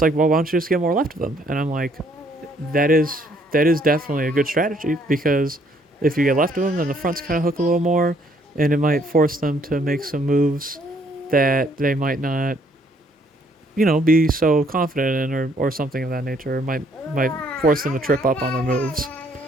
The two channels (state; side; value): normal; both; correlation 0.66